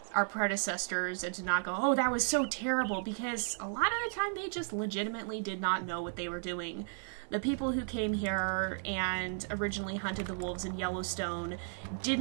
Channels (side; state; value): left; silent; 55 dB below the other